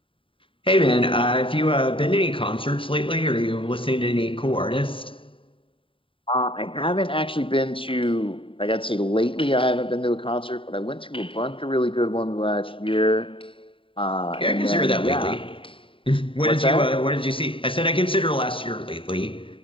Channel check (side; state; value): right; late; 0.25 ms